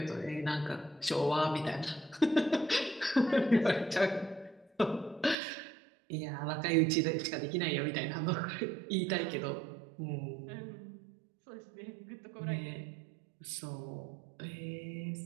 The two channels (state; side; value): drops out; left; at 5.4 s